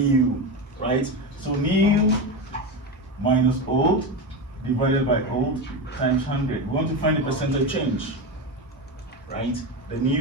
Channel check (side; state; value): both; normal; correlation 0.18